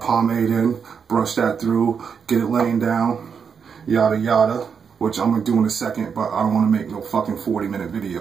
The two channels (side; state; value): left; quieter; 6.4 dB